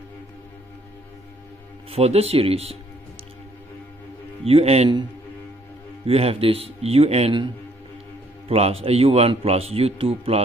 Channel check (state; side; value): normal; both; correlation 0.65